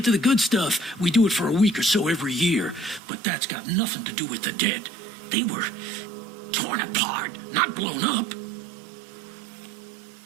to the good stuff, we do it for a week or so every year. But that's got nothing to do with the dead. They were torn apart, not blown up.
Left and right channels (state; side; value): drops out; left; at 3.0 s